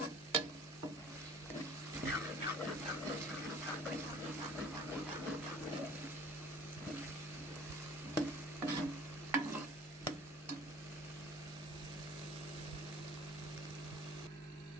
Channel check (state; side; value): normal; both; correlation 0.48